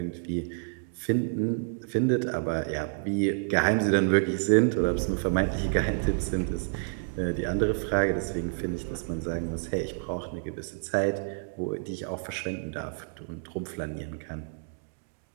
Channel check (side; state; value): left; silent; digital silence